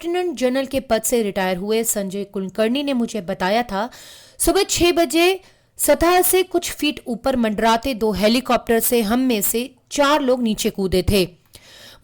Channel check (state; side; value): identical; both; correlation 1.00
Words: जनरल के पद से रिटायर हुए संजय कुलकर्णी ने मुझे बताया था, सुबह 6 बजे सतह से कुछ फीट ऊपर मंडराते 2 हेलीकॉप्टर से हम में से 4 लोग नीचे कूदे थे।